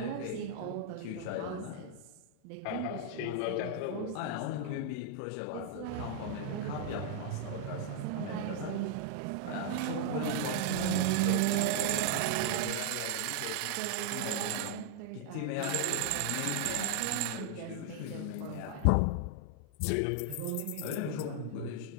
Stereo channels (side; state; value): both; different; correlation 0.00